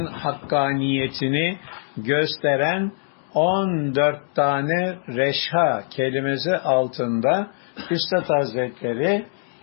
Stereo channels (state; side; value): silent; right; digital silence